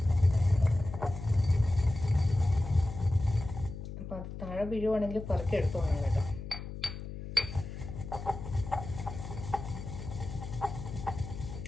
അപ്പം അത് താഴെ വീഴുവാണെങ്കിൽ പറക്കി എടുത്തു പോകണം കേട്ടോ.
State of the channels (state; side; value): noise; left; hum, 9 dB below the sound